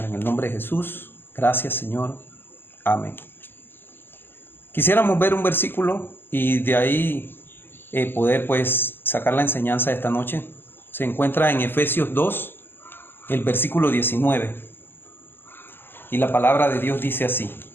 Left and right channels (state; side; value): late; right; 0.098 ms